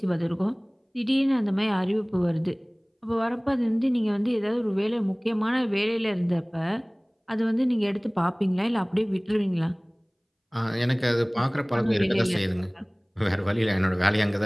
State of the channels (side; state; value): both; identical; correlation 1.00